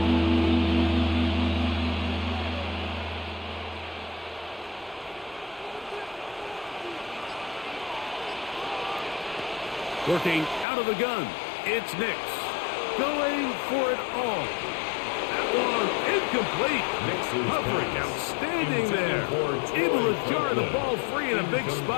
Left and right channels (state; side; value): drops out; right; at 10.7 s